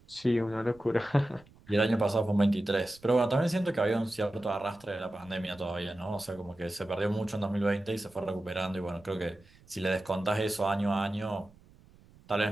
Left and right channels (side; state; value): right; noise; rumble, 26 dB below the sound